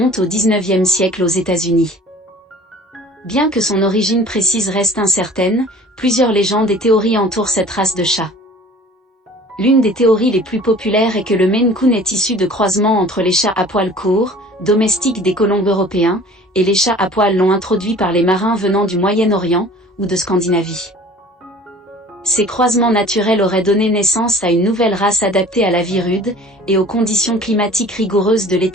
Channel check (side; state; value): both; normal; correlation 0.47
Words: au XIXe siècle aux États-Unis. Bien que son origine précise reste incertaine, plusieurs légendes et théories entourent cette race de chat. L'une des théories les plus populaires est que le Maine Coon est issu de croisements entre les chats à poils courts, domestiques des colons européens, et les chats à poils longs introduits par les marins venant du Moyen-Orient, ou de Scandinavie. Ces croisements naturels auraient donné naissance à une nouvelle race adaptée à la vie rude, et aux conditions climatiques rigoureuses de